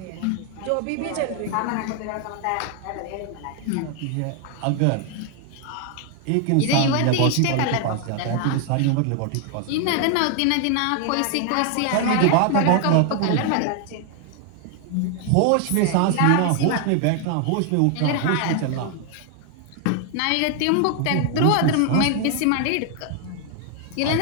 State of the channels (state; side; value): different; both; correlation 0.00